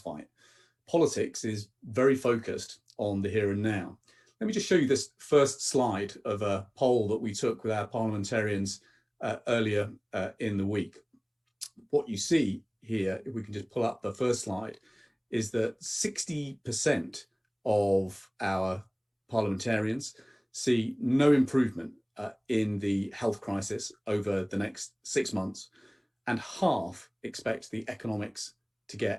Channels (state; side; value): identical; both; correlation 1.00